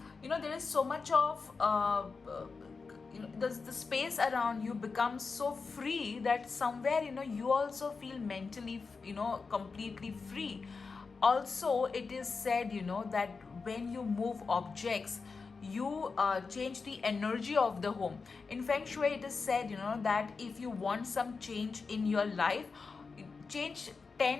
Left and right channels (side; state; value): right; quieter; 4.7 dB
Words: there is so much of the space around you becomes so free that somewhere you also feel mentally completely free. Also, it is said that when you move objects, you change the energy of the home. In feng shui, it is said that if you want some change in your life, change